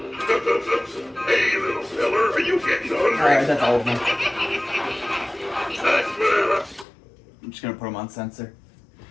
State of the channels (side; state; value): right; drops out; at 6.9 s